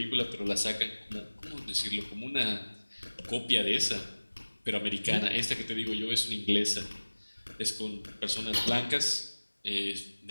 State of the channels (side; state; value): both; inverted; correlation -1.00